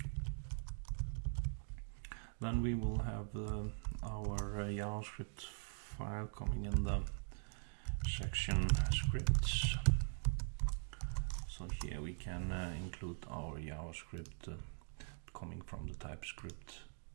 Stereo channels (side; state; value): left; silent; digital silence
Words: then we will have our JavaScript file coming in the section scripts. So here we can include our JavaScript coming from the TypeScript